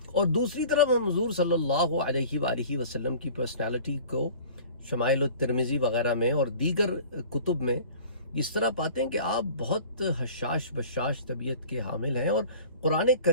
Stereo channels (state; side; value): inverted; both; correlation -0.44